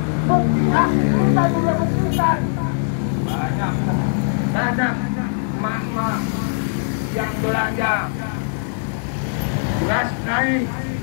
Buktinya kita juga buktikan. Banyak mama yang belanja beras naik,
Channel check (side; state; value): right; silent; digital silence